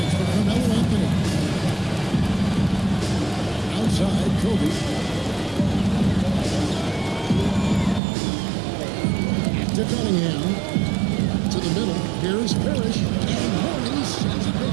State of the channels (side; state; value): left; drops out; at 8.0 s